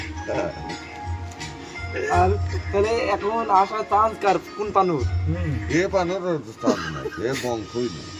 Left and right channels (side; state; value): both; identical; correlation 1.00